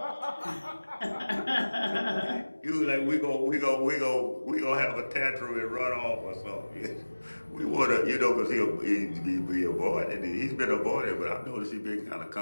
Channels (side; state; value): both; inverted; correlation -1.00